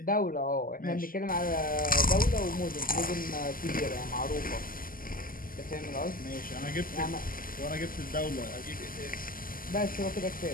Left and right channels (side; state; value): right; late; 0.41 ms